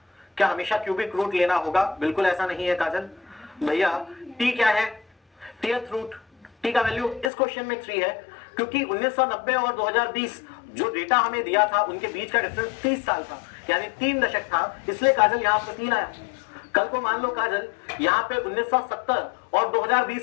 क्या हमेशा क्यूबिक रूट लेना होगा? बिल्कुल ऐसा नहीं है काजल भैया। टी क्या है? टीएथ रूट। टी का वैल्यू इस क्वेश्चन में 3 है क्योंकि 1990 और 2020 जो डेटा हमें दिया था उनके बीच का डिफरेंस 30 साल था, यानी 3 दशक था, इसलिए काजल यहाँ पर 3 आया। कल को मान लो काजल यहाँ पे 1970 और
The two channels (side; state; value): right; drops out; at 7.3 s